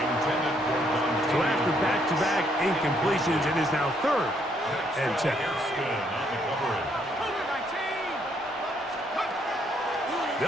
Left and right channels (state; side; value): normal; both; correlation 0.71